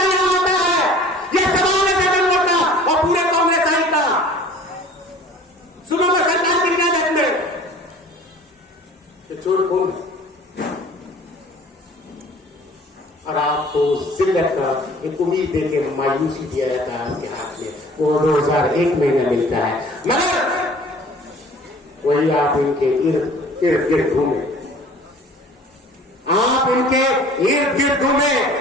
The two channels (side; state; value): both; normal; correlation 0.48